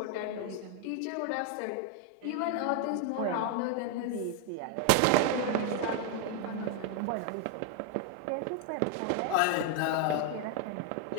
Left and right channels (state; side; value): different; both; correlation 0.01